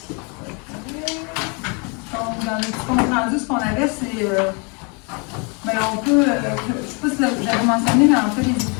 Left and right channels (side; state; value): right; quieter; 33.3 dB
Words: Donc, dans le petit compte rendu, ce qu'on avait, c'est. Ben, on peut. Je ne sais pas si j'avais mentionné, mais en fait, les